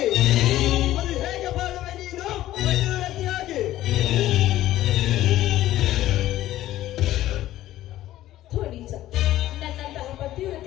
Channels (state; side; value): quieter; right; 14.3 dB